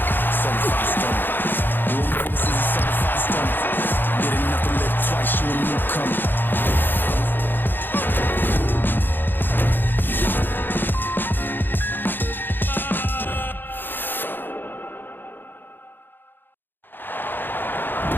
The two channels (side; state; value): right; late; 0.095 ms